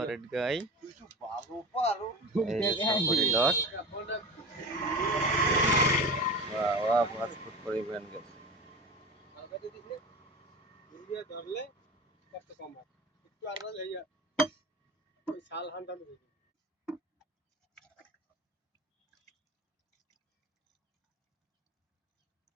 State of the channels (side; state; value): both; normal; correlation 0.32